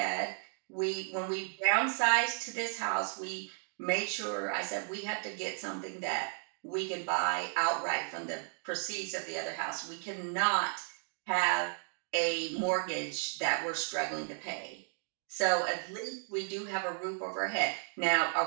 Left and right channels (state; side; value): silent; left; 55 dB below the other